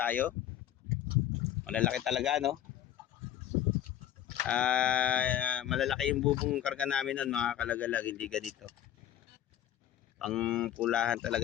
Malalaki talaga, no? Malalaki yung bubong karga namin nun mga kalagalag, hindi ganito. Pang pulahan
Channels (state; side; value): quieter; right; 11.4 dB